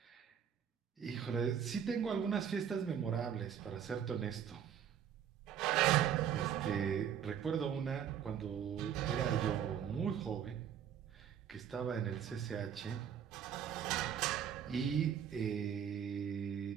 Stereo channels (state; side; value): quieter; left; 8.8 dB